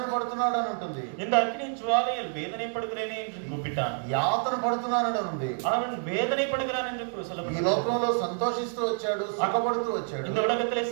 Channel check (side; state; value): left; silent; 59 dB below the other